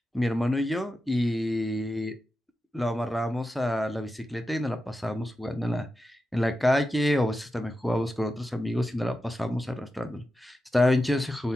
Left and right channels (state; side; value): normal; both; correlation 0.90